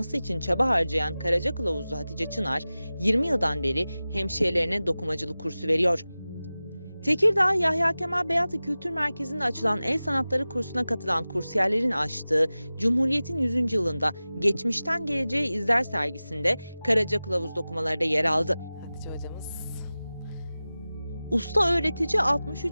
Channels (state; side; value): inverted; both; correlation -0.96